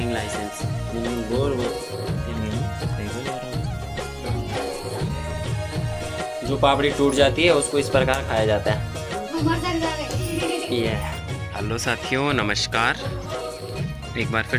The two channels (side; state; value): both; identical; correlation 1.00